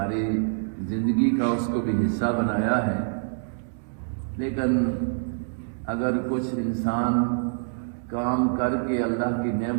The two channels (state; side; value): silent; left; 61 dB below the other